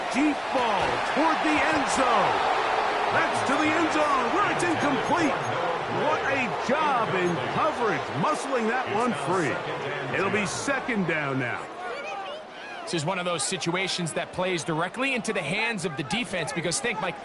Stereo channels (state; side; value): identical; both; correlation 1.00